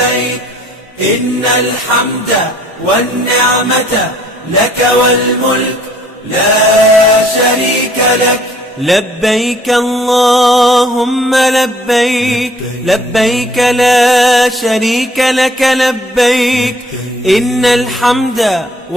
إن الحمد والنعمة لك والملك لا شريك لك. لبيك اللهم لبيك لبيك لا شريك لك لبيك إن الحمد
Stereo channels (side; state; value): both; normal; correlation 0.59